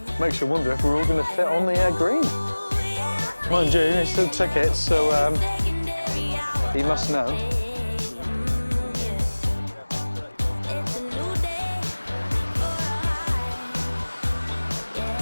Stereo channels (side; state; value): both; inverted; correlation -1.00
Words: Makes you wonder if we're all going to fit on the green. Mind you, there's still tickets, so he must know.